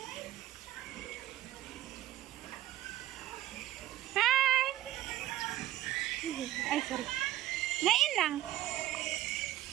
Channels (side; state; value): left; quieter; 14.1 dB